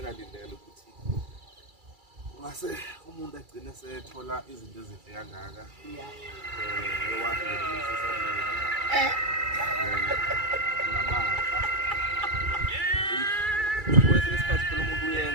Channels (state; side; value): late; left; 2.3 ms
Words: ukuthi ungase umuntu agcine sethola izinto ezinhle kangaka ewathi namandla kwesinye isikhathi phela umuntu